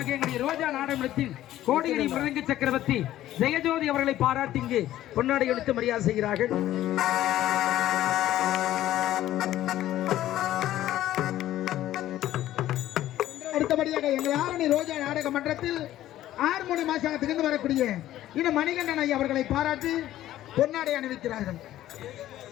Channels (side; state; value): right; quieter; 13.6 dB